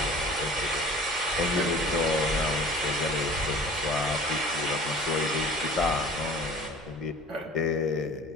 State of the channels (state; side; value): normal; both; correlation 0.45